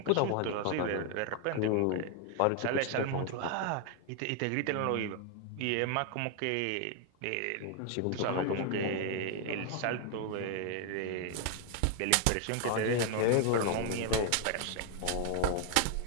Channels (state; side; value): different; both; correlation 0.00